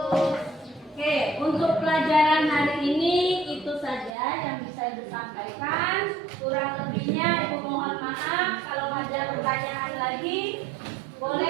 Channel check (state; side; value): drops out; left; at 4.2 s